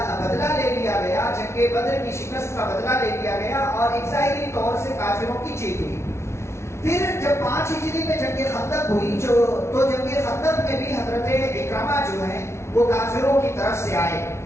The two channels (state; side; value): late; right; 0.13 ms